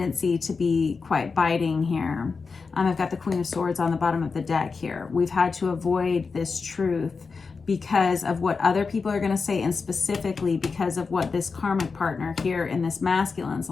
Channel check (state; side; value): quieter; right; 4.8 dB